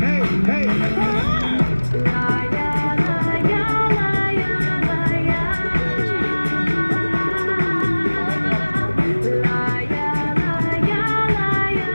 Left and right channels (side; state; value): both; inverted; correlation -1.00